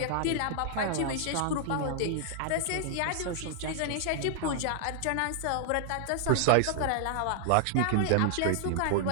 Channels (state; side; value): different; both; correlation -0.01